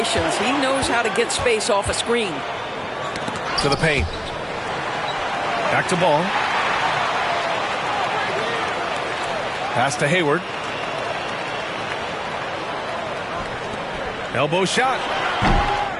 He knows how to get space off a screen. To the paint. Back to ball. Pass to Hayward. Elbow shot.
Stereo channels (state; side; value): identical; both; correlation 1.00